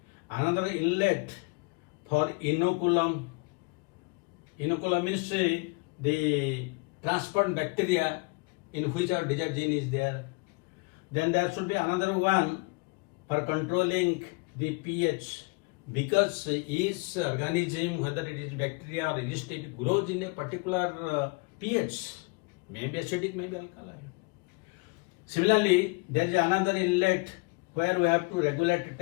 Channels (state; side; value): quieter; right; 28.8 dB